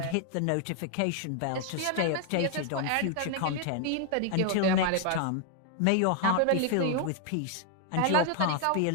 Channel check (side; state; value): both; different; correlation 0.00